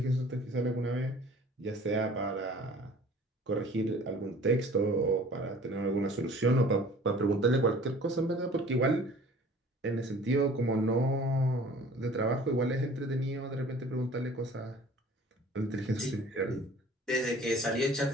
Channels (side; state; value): both; normal; correlation 0.48